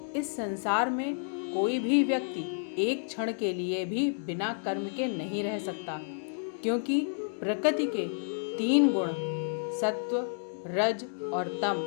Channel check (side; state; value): right; silent; digital silence